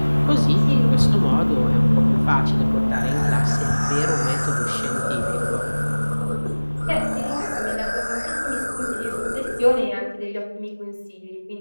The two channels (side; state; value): both; inverted; correlation -1.00